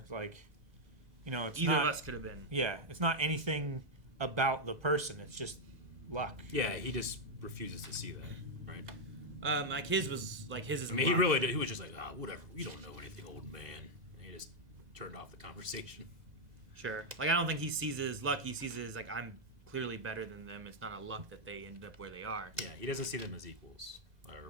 like, it's Either not. of us could have been. Yeah, it's not anything about the person. It's just luck. Yeah, he just refuses to see that, right? Like his was like his is. I mean, he really did. He was just like, whatever. You don't know anything, old man. And he just turned off the conversation. Sure. Like, I don't think he sees it as luck. He sees it as like, I'm clearly better than them. It's not a luck that they ended up where they are. Yeah, he doesn't see them as equals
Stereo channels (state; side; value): late; left; 2.0 ms